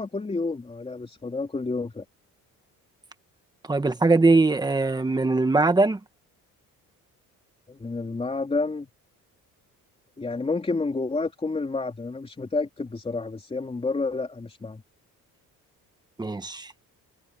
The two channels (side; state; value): both; normal; correlation 0.76